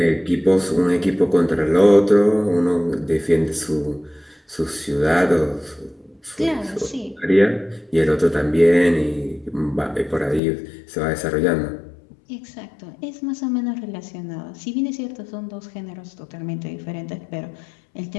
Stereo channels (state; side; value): drops out; right; at 10.4 s